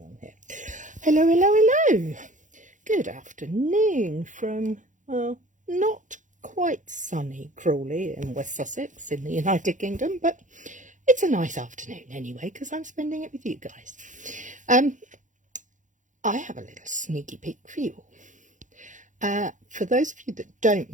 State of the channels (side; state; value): left; late; 0.37 ms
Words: on here. Hello. Good afternoon from, well, not quite sunny Crawley in West Sussex in the United Kingdom, but it's a nice afternoon anyway, because I'm spending it with you guys. I have a little sneaky peek for you all. For those of you that don't